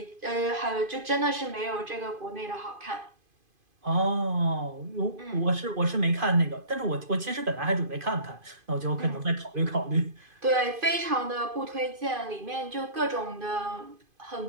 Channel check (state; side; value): late; left; 2.5 ms